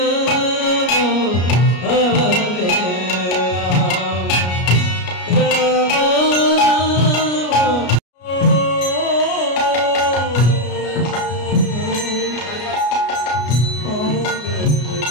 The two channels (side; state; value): right; late; 33 ms